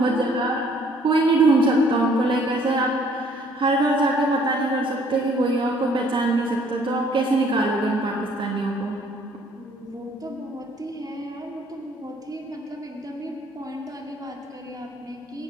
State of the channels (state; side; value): normal; both; correlation 0.60